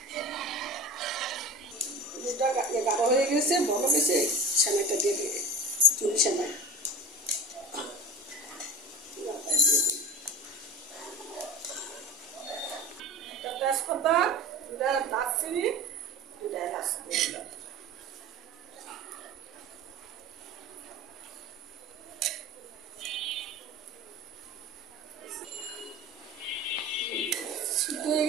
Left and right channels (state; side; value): normal; both; correlation 0.33